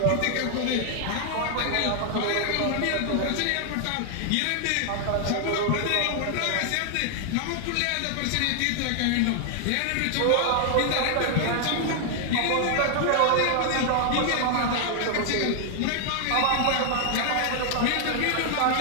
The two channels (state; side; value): different; both; correlation 0.00